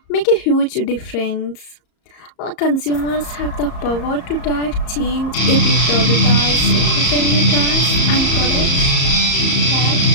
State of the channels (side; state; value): right; late; 34 ms